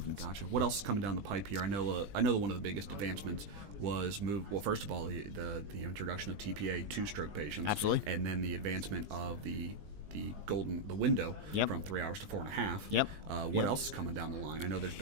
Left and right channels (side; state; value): left; late; 20 ms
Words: Gotcha. What else is coming down the pipe here? I know that one of the biggest advancements was first of all, the introduction of TPA to stroke patients. Absolutely. And then the advancement of the window from 3 hours to 4.5. What else is coming down the line? I know there's